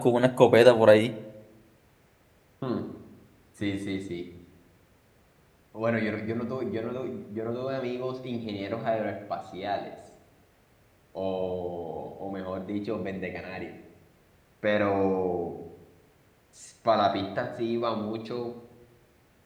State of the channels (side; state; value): both; identical; correlation 1.00